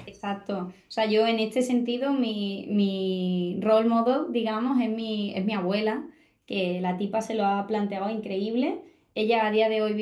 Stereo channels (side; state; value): both; identical; correlation 1.00